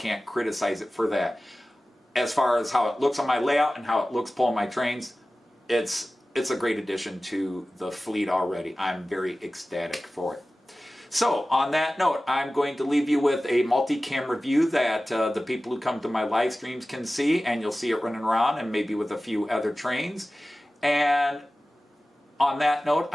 criticize it for that. As far as how it looks on my layout and how it looks pulling my trains, it's a great addition to the fleet already. I'm very ecstatic for it. So, on that note, I'm going to leave you with a multi-cam review that the people who come to my live streams can see, and you'll see it running around, and maybe with a few other trains. And on that note,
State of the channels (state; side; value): normal; both; correlation 0.96